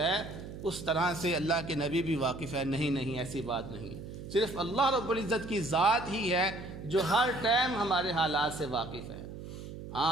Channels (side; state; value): right; noise; hum, 11 dB below the sound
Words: اس طرح سے اللہ کے نبی بھی واقف ہے۔ نہیں، ایسی بات نہیں، صرف اللہ رب العزت کی ذات ہی ہے جو ہر ٹائم ہمارے حالات سے واقف ہے۔